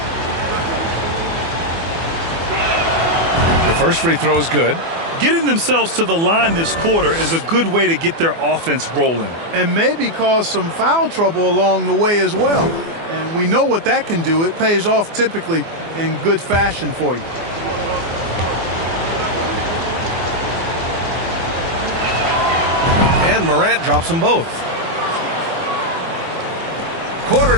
First free throw is good. Getting themselves to the line this quarter is a good way to get their offense rolling. And maybe cause some foul trouble along the way as well. And we know what that can do. It pays off typically in good fashion for you. And Morant drops them both. Quarter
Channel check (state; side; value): late; left; 24 ms